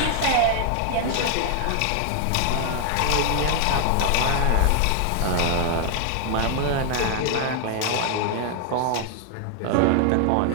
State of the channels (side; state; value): both; different; correlation 0.00